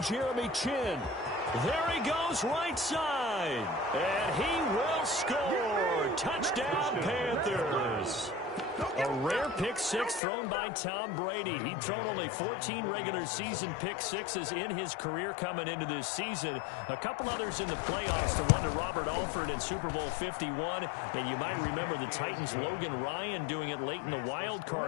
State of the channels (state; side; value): drops out; right; at 10.2 s